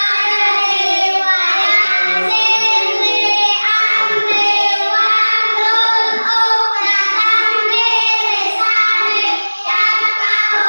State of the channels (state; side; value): inverted; both; correlation -1.00